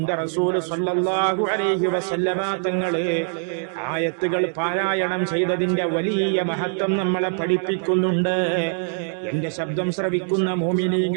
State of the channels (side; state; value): left; silent; 63 dB below the other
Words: റസൂൽ സ്വല്ലല്ലാഹു അലൈഹി വസല്ലമ തങ്ങളെ ആയത്തുകൾ പാരായണം ചെയ്തതിന്റെ വലിയ മഹത്വം നമ്മളെ പഠിപ്പിക്കുന്നുണ്ട്. എന്റെ ശബ്ദം ശ്രവിക്കുന്ന